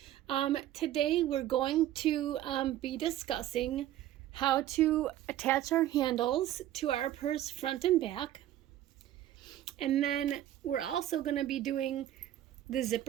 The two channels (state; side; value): quieter; left; 12.9 dB